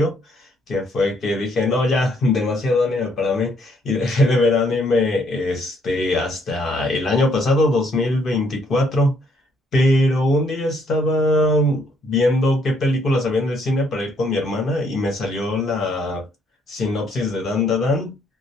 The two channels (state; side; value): normal; both; correlation 0.69